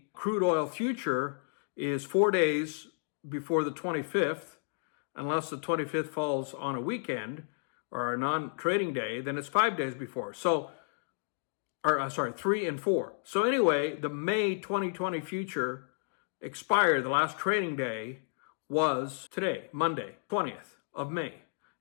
crude oil future is 4 days before the 25th, unless the 25th falls on a weekend or a non-trading day, then it's 5 days before. 3 and 4. So anyway, the May 2020 future expired. The last trading day was today, Monday, 20th of May.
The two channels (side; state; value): right; silent; digital silence